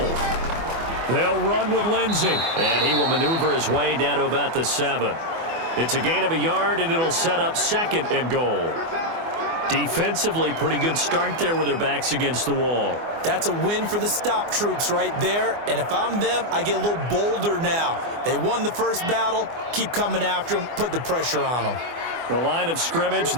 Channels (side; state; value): left; late; 24 ms